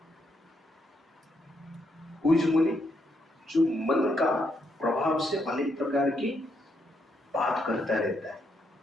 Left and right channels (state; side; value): normal; both; correlation 0.77